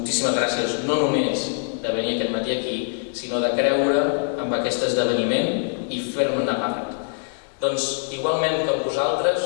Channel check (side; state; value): right; silent; 63 dB below the other